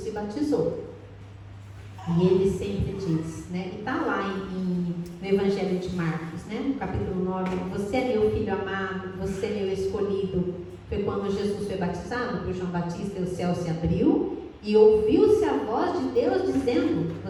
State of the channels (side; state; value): both; identical; correlation 1.00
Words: batizou. E ele sempre diz, e está lá no Evangelho de Marcos, no capítulo 9, você é meu filho amado, você é meu escolhido. Foi quando Jesus foi batizado por João Batista e o céu se abriu e ouviu-se a voz de Deus dizendo,